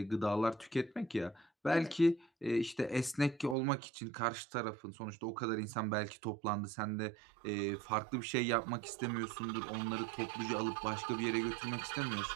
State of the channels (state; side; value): drops out; left; at 3.6 s